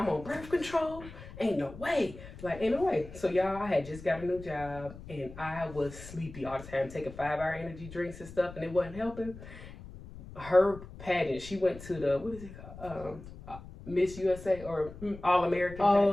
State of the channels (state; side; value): noise; left; rumble, 15 dB below the sound